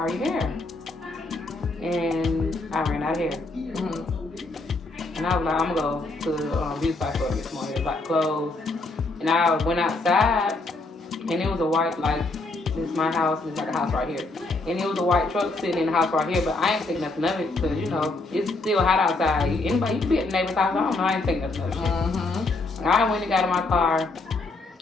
hair. And I ran out of hair. Mm-hmm. And I was like, I'm going to go to the beauty supply store this morning. It was like clothes. And I went outside, and it was a white, like, this is my house. It's like a house right here. And it was a white truck sitting in the house right here, but I ain't think nothing of it because, you know, it's still hot outside. Anybody, you can be at the neighbor's house, I don't know, I ain't think nothing of it. Mm-hmm. I went and got in my car,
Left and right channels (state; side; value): quieter; right; 3.2 dB